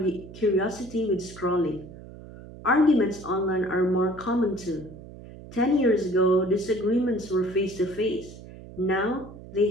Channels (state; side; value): noise; right; hum, 16 dB below the sound